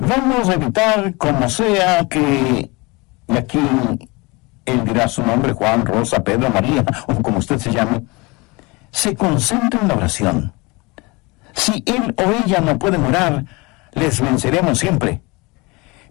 a evitar como sea que, y aquí él dirá su nombre, Juan, Rosa, Pedro, María, o como usted se llame, se concentre en la oración. Si él o ella no pueden orar, les venceremos siempre.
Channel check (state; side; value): quieter; right; 25.7 dB